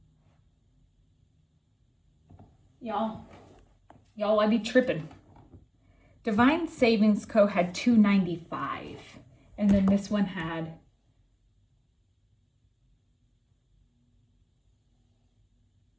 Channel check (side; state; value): both; identical; correlation 1.00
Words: Y'all, I be tripping. Divine Savings Co. had $295, and then this one had